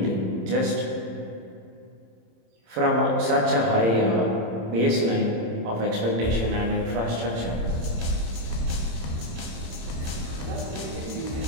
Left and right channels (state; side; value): late; left; 27 ms